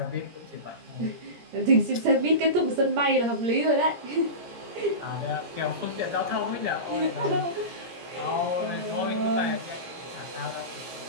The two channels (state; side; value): late; left; 17 ms